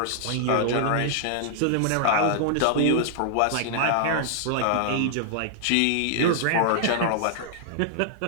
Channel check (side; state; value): both; different; correlation -0.01